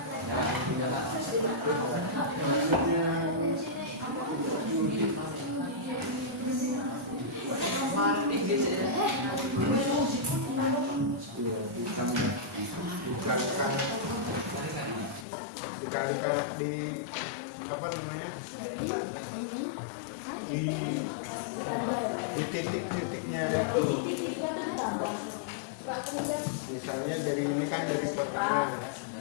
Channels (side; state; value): right; drops out; at 15.2 s